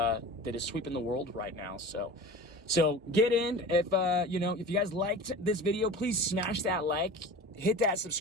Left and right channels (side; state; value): both; normal; correlation 0.36